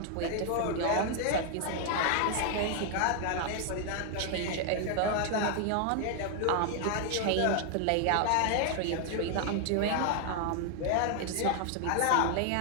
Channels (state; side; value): different; both; correlation 0.00